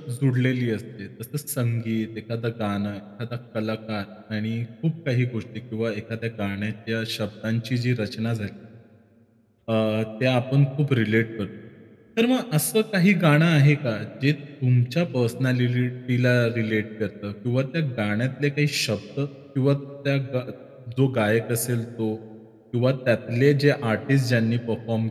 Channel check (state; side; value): identical; both; correlation 1.00